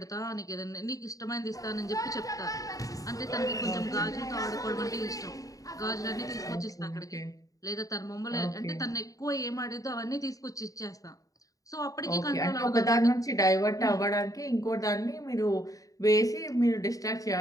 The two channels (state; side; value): late; right; 0.17 ms